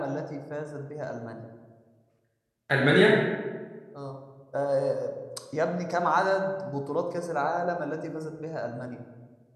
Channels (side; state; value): both; identical; correlation 1.00